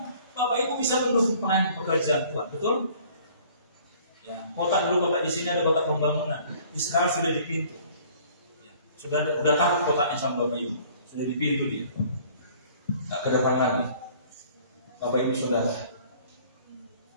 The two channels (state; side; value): inverted; both; correlation -0.54